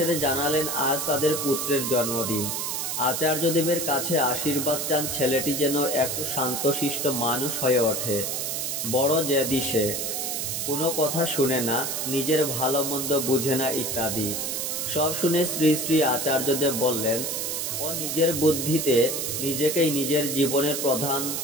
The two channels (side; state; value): right; noise; hiss, 2 dB below the sound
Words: জানালেন আজ তাদের পুত্রের জন্মদিন। আচার্যদেবের কাছে আশীর্বাদ চান ছেলেটি যেন একটু শান্তশিষ্ট মানুষ হয়ে ওঠে। বড় জেদি সে, কোনো কথা শুনে না, নিজের ভালো মন্দ বুঝে না ইত্যাদি। সব শুনে শ্রী শ্রী আচার্যদেব বললেন, ও নিজের বুদ্ধিতে নিজেকেই নিজের জীবনের প্রধান